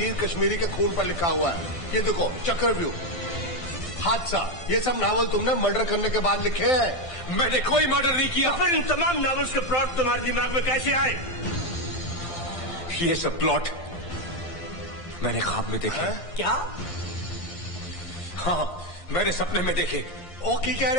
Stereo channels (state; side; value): late; right; 1.5 ms